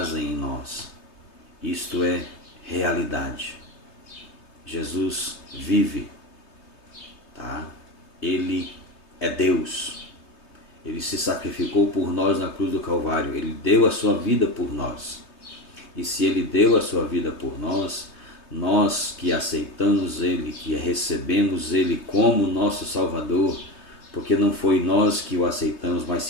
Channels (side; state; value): right; late; 3.2 ms